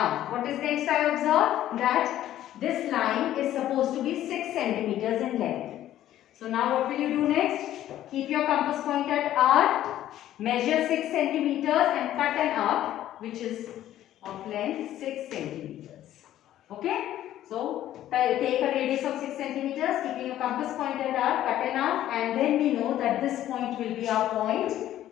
what is next I observe? That this line is supposed to be 6 centimeters in length. So now what will you do next? Keep your compass point at R, measure 6 centimeters and cut an arc which is of length 6 centimeters. Okay? So take a radius of 6 centimeters, keeping your compass point at R, cut an arc, and then we know that this point will be our point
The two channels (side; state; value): right; quieter; 12.7 dB